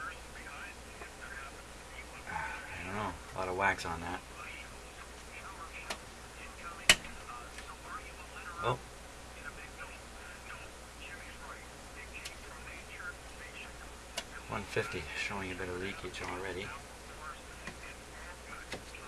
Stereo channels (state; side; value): identical; both; correlation 1.00